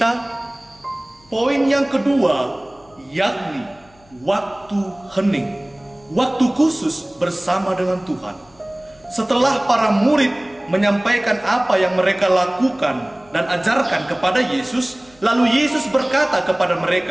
Poin yang kedua yakni waktu hening, waktu khusus bersama dengan Tuhan. Setelah para murid menyampaikan apa yang mereka lakukan dan ajarkan kepada Yesus, lalu Yesus berkata kepada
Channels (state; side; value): noise; left; hum, 29 dB below the sound